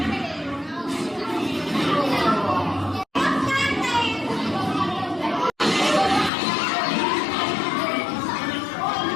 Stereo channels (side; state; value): right; drops out; at 6.3 s